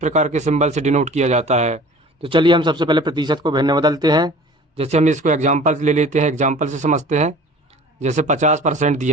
के सिंबल से डिनोट किया जाता है। तो चलिए हम सबसे पहले प्रतिशत को भिन्न बदलते हैं। जैसे हम इसको एग्जाम्पल ले लेते हैं, एग्जाम्पल से समझते हैं। जैसे 50%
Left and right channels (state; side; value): normal; both; correlation 0.44